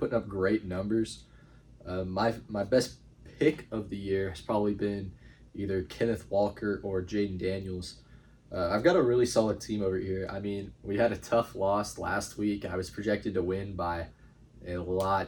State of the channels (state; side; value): identical; both; correlation 1.00